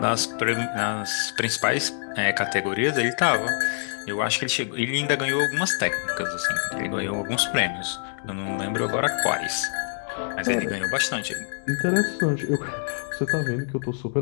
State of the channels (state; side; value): silent; right; digital silence